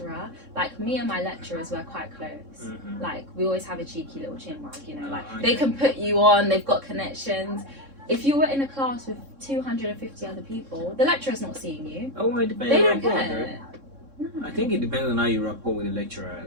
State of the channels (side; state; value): left; late; 3.6 ms